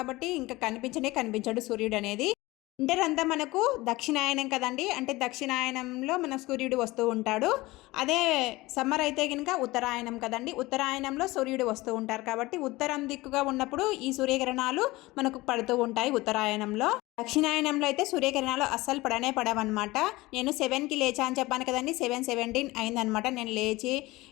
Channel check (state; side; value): quieter; right; 20.3 dB